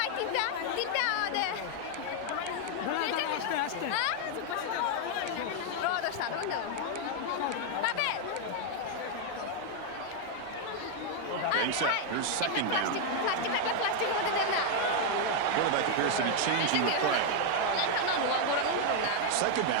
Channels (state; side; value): different; both; correlation 0.00